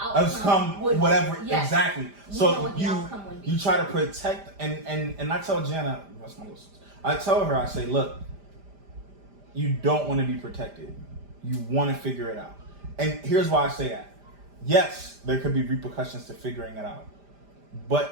outcome would whatever Yes. exactly. We know So what the outcome would be. you try to protect and I tell Jana, what's my list? I tell her, I say, look, you don't want to be protected. You want to figure it out. And here's why I say that. Yes, there could be repercussions to figuring it out. But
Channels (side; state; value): left; late; 5.0 ms